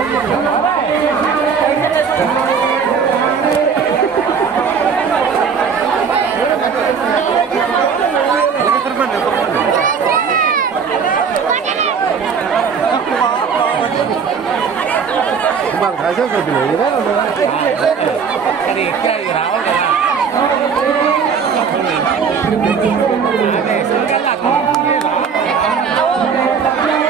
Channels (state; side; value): quieter; left; 6.2 dB